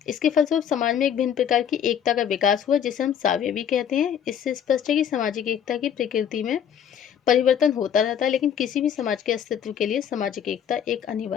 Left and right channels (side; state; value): right; quieter; 8.8 dB